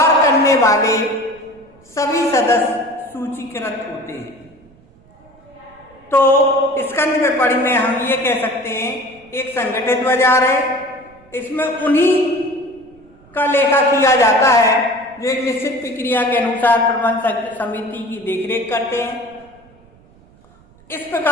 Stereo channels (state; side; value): noise; right; rumble, 28 dB below the sound